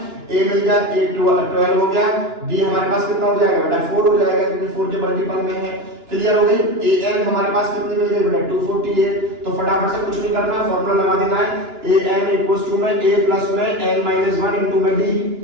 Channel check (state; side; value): late; left; 2.9 ms